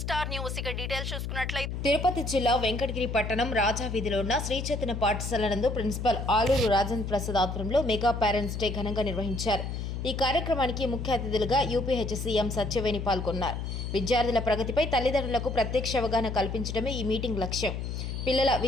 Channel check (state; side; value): noise; left; hum, 4 dB below the sound